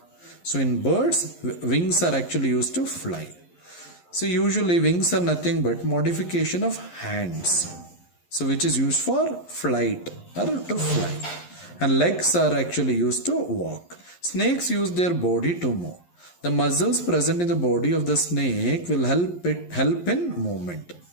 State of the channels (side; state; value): right; late; 11 ms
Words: So in birds, wings are actually used to fly. So usually wings are nothing but modification of hands. So which is used for flight or to fly. And legs are actually used to walk. Snakes use their body to move. The muscles present in the body of the snake will help in movement.